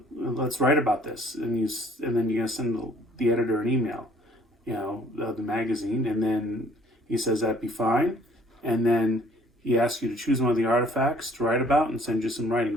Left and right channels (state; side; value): normal; both; correlation 0.58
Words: write about this," and then you're gonna send the editor an email, of the magazine, and then he says that'd be fine, and then he asks you to choose one of the artifacts to write about and send you some